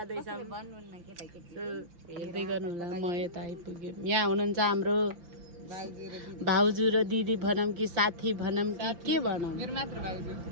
हेर्दै गर्नु होला, म यता आइपुग्यो। यहाँ हुनुहुन्छ हाम्रो भाउजू र दिदी भनौँ कि साथी भनौँ कि के भनौँ? मेरो मात्र भाउजू।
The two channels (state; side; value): late; left; 5.8 ms